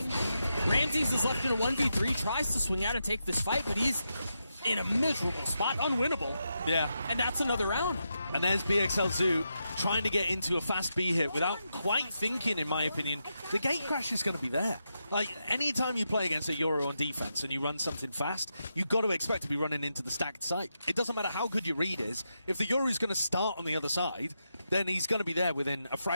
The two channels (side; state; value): both; inverted; correlation -0.85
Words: Ramses is left in a 1v3, tries to swing out and take this fight, but he's in a miserable spot, unwinnable. Yeah. And that's another round. And there's BXL Zoo trying to get into a fast B hit without quite thinking, in my opinion. The gate crash is going to be there. Anytime you play against a Euro on defense and you run something fast, you've got to expect to be running into the stacked site. It doesn't matter how good your read is. If the Euro is going to start on the other side, then he's going to be there within a